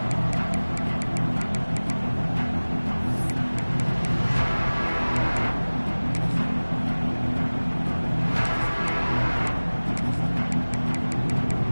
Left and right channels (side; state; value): both; inverted; correlation -1.00